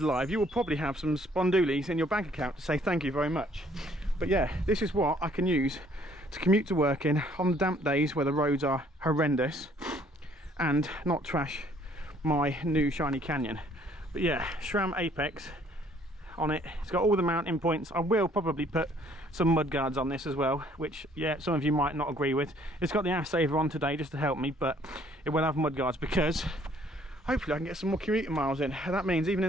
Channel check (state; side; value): normal; both; correlation 0.62